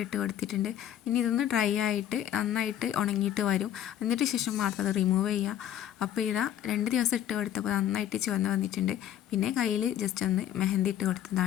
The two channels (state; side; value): quieter; right; 10.9 dB